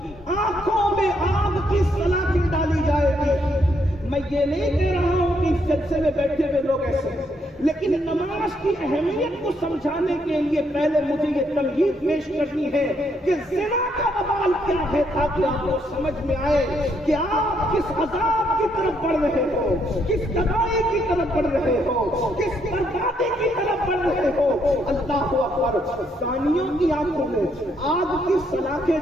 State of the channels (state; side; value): normal; both; correlation 0.74